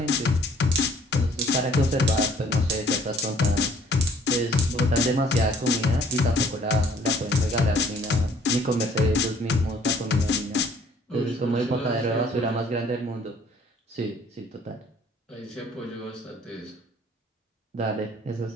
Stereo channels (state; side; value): normal; both; correlation 0.58